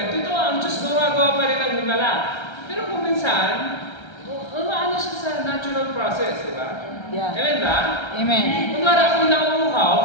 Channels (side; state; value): right; late; 1.3 ms